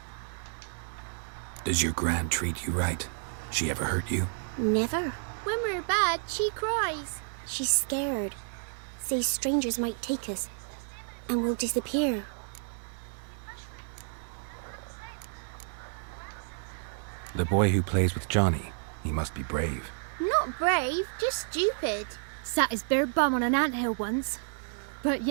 Does your Gran treat you right? She ever hurt you? Never. When we're bad, she cries. She's scared. Says strangers might take us. And we'll disappear. The boy who plays with Johnny, he must be brave. Not brave, just stupid. Sat his bare bum on an anthill once. But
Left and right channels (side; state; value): left; silent; digital silence